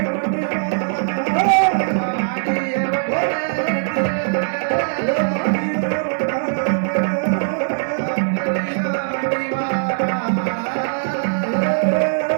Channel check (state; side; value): silent; left; digital silence